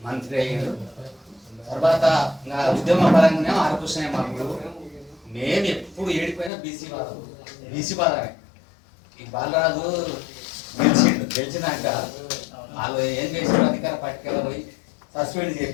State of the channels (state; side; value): drops out; right; at 6.5 s